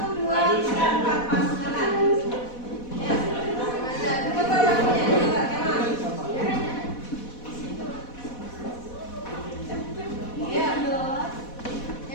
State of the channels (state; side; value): late; right; 4.1 ms